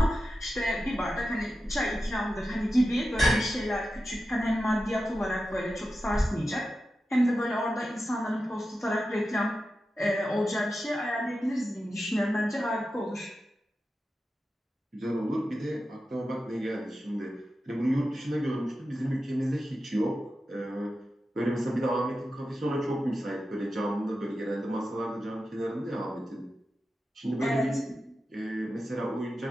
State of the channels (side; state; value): both; normal; correlation 0.92